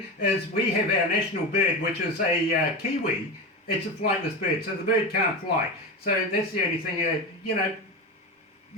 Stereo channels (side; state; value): both; normal; correlation 0.21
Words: is we have our national bird, which is a kiwi, It's a flightless bird, so the bird can't fly. So that's the only thing,